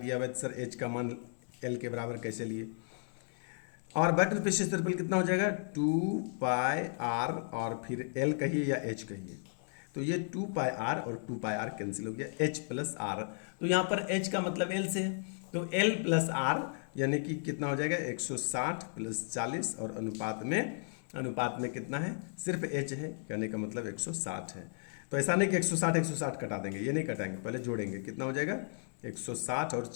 हुआ है सर h का मान l के बराबर कैसे लिए। और वक्र पृष्ठीय क्षेत्रफल कितना हो जाएगा, 2 पाई r और फिर l कहिए या h कहिए, तो ये 2 पाई r और 2 पाई r कैंसिल हो गया, h प्लस r, तो यहाँ पर h का मतलब l से है, तो l प्लस r यानी कि कितना हो जाएगा 160 प्लस 40, और अनुपात में कितना है, सिर्फ h है, कहने का मतलब 160 है। तो ऐसा नहीं कि 160 कटा देंगे, ये नहीं कटाएंगे, पहले जोड़ेंगे, कितना हो जाएगा 160 और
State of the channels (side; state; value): right; silent; digital silence